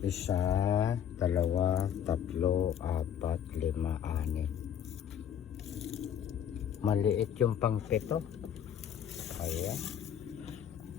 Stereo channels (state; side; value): quieter; right; 9.2 dB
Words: Isa, dalawa, tatlo, apat, lima, anim. Maliit yung pang pito. Ayan.